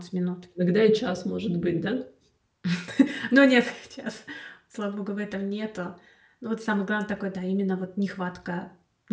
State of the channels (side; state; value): both; identical; correlation 1.00